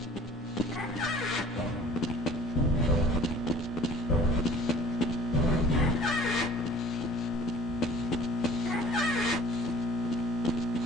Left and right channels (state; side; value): normal; both; correlation 0.48